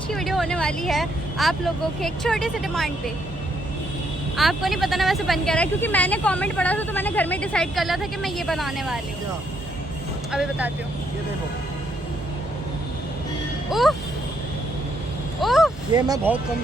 की वीडियो होने वाली है आप लोगों के एक छोटे से डिमांड पे। आपको नहीं पता ना वैसे बन क्या रहा है, क्योंकि मैंने कमेंट पढ़ा था तो मैंने घर में डिसाइड कर लिया था कि मैं ये बनाने वाली हूँ। अभी बताती हूँ। ये देखो, उफ उफ ये मैं बहुत कम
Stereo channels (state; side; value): normal; both; correlation 0.74